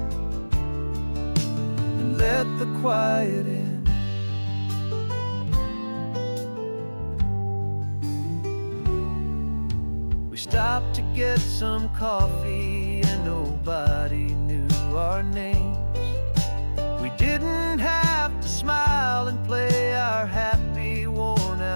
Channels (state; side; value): inverted; both; correlation -1.00